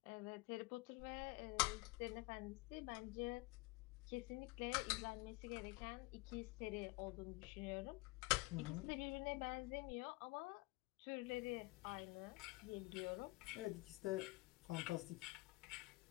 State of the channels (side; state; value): right; quieter; 23.4 dB